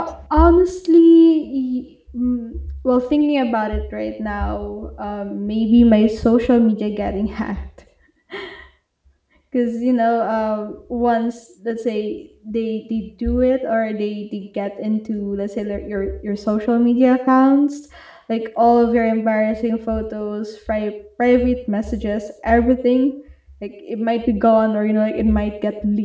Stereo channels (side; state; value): both; identical; correlation 1.00